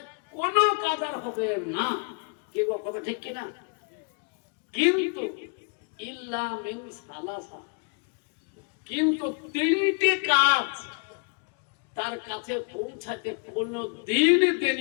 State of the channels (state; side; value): quieter; right; 38.8 dB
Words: কোনো কাজ আর হবে না। কে কথা ঠিক কিনা? কিন্তু ইল্লা মিন সালাসা, কিন্তু 3টে কাজ তার কাছে পৌঁছাতে কোনো দিন